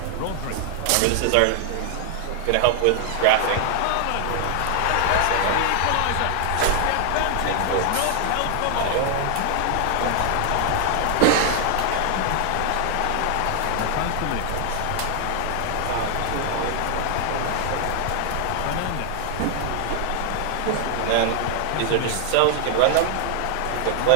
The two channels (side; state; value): both; different; correlation 0.00